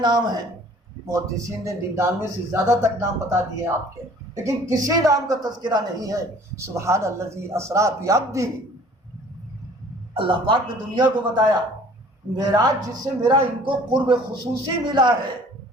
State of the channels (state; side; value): normal; both; correlation 0.52